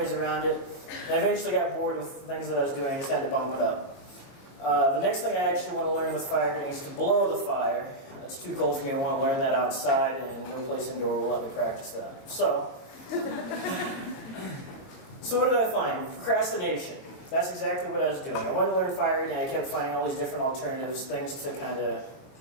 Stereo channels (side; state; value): right; late; 22 ms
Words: around it, and I eventually got bored with the things that I was doing. I just had to bump it up. The next thing I actually want to learn with fire is to blow the fire. It's too cold for me. I want to learn that outside, and no place indoor will let me practice that. So what did I find? Procrastination. That's exactly what I was doing. I wanted to learn fire eating. I kept finding all these different alternatives, things to kind of